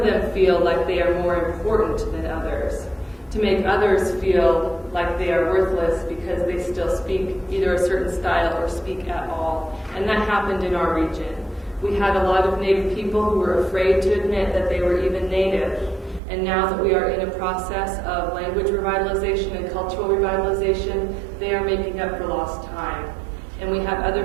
them feel like they are more important than others, to make others feel like they are worthless because they still speak either a certain style or speak at all. And that happened in our region. We had a lot of native people who were afraid to admit that they were even native. And now that we are in a process of language revitalization and cultural revitalization, they are making up for lost time. And we have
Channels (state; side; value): drops out; left; at 16.2 s